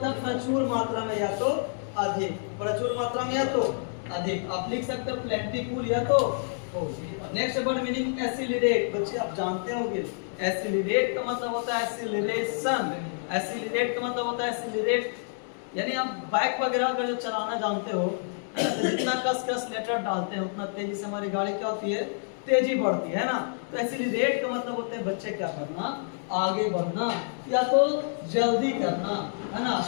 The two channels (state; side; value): silent; right; 59 dB below the other